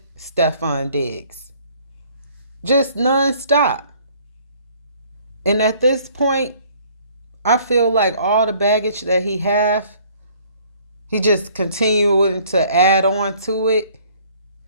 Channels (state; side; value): inverted; both; correlation -0.58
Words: Stefon Diggs. Just nonstop. And at this point, I feel like all the baggage that he just continuing to add on to it.